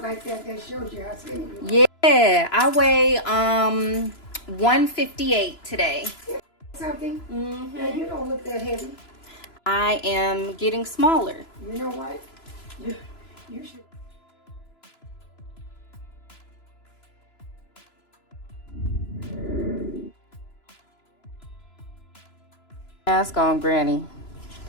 like that shows you how skinny you are. Yeah, I weigh 158 today. Something? Mm-hmm. You don't look that heavy. I am getting smaller. You know what? You should. Mask on, Granny.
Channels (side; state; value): right; late; 3.0 ms